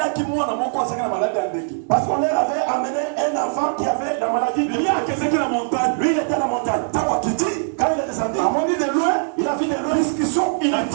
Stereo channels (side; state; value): left; silent; 63 dB below the other